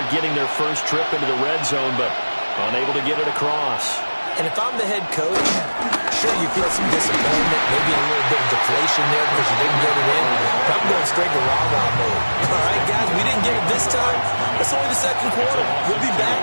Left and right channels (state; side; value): inverted; both; correlation -1.00